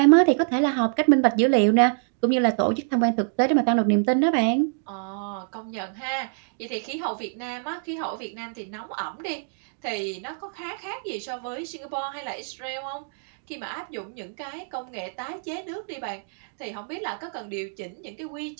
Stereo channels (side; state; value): left; silent; digital silence